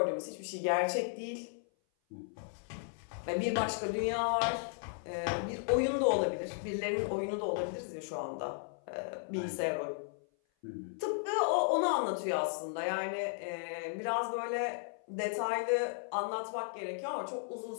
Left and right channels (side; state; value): right; silent; 54 dB below the other